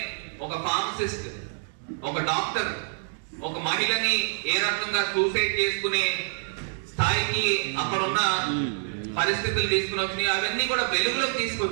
ఒక ఫార్మసిస్ట్, ఒక డాక్టర్, ఒక మహిళని ఏ రకంగా సూసైడ్ చేసుకునే స్థాయికి అక్కడున్న పరిస్థితులు తీసుకుని వచ్చినాయి. అవన్నీ కూడా వెలుగులోకి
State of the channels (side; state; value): left; silent; digital silence